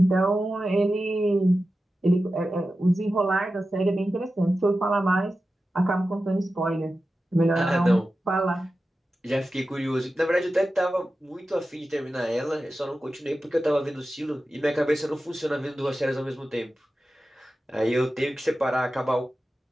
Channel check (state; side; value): normal; both; correlation 0.93